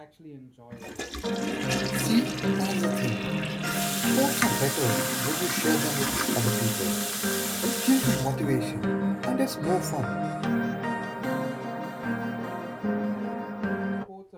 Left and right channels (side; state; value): both; identical; correlation 1.00